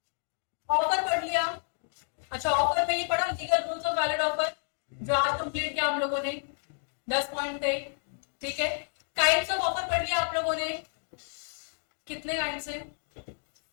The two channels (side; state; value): right; silent; digital silence